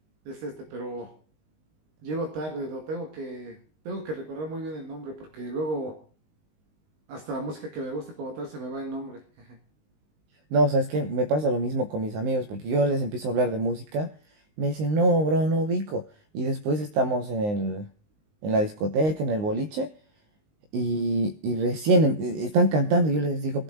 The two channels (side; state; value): left; late; 19 ms